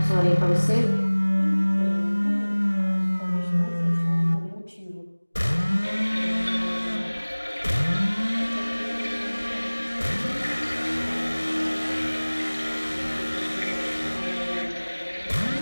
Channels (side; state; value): both; inverted; correlation -1.00